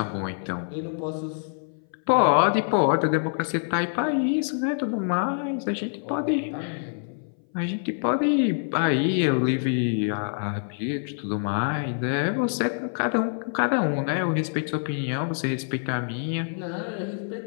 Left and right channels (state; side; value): silent; right; 59 dB below the other